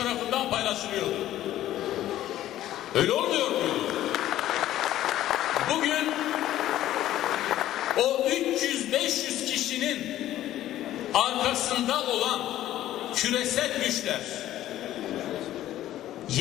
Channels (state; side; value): quieter; right; 13.4 dB